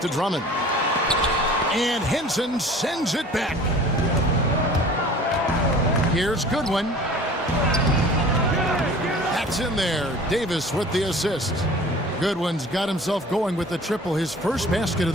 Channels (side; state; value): both; normal; correlation 0.45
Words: Drummond. And Henson sends it back. Here's Goodwin. That's in there. Davis with the assist. Goodwin's got himself going with the triple, his first basket of